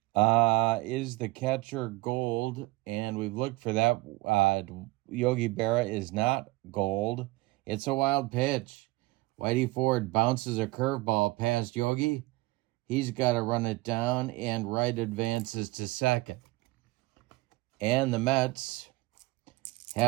Is the catcher Gold? And we've looked for that. Yogi Berra is not Gold. It's a wild pitch. Whitey Ford bounces a curveball past Yogi. He's got to run it down, and Wright advances to second. And the Mets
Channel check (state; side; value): quieter; left; 20.9 dB